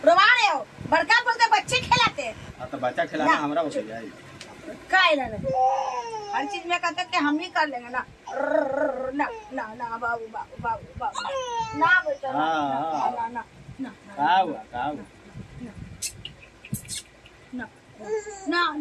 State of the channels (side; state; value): both; identical; correlation 1.00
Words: रोवा रहे हो। बड़का बोलते बच्चे खिलाते हैं। तो बच्चा खिलाना हमारा होता है काय ना हर चीज में कहते कि हम ही कर लेंगे ना ना ना ना बाबू बाबू बाबू बाबू ना बेटा ना ना ना ना का हुआ ना ना ना ना